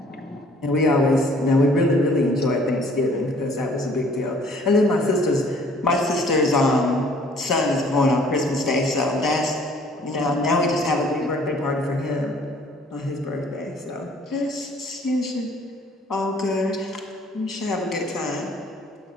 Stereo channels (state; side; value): normal; both; correlation 0.57